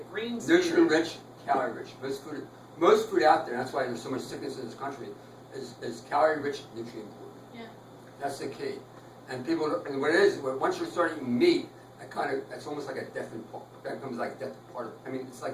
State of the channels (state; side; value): identical; both; correlation 1.00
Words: green smoothie. Nutrient rich, calorie rich. Most food out there, that's why there's so much sickness in this country, is calorie rich, nutrient poor. Yeah. That's the key. And and what it is, once you start eating meat, that's almost like a death that becomes like death part of, it's